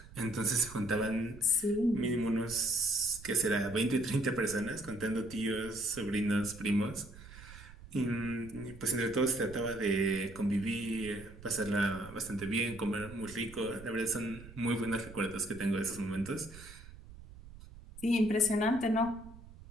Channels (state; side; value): noise; right; rumble, 17 dB below the sound